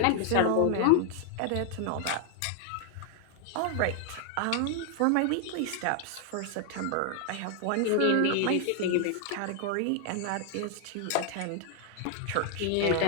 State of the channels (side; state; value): both; different; correlation 0.00